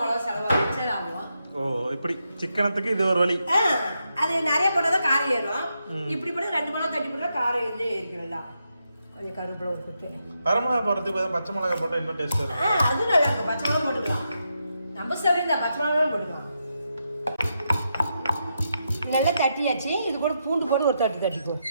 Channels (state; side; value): inverted; both; correlation -0.84